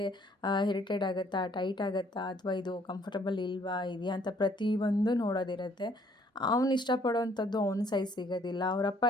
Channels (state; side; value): normal; both; correlation 0.63